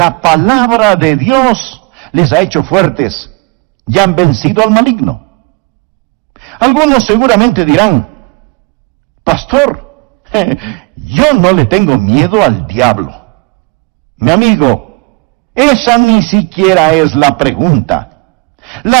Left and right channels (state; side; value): quieter; left; 29.4 dB